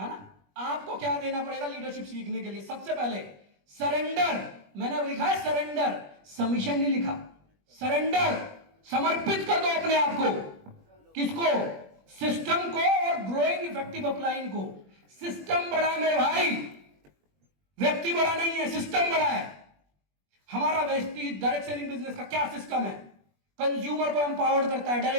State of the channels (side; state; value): left; late; 21 ms